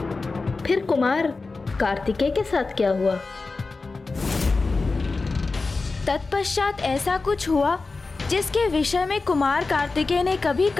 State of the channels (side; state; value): right; quieter; 3.8 dB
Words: फिर कुमार कार्तिकेय के साथ क्या हुआ? तत्पश्चात ऐसा कुछ हुआ जिसके विषय में कुमार कार्तिकेय ने कभी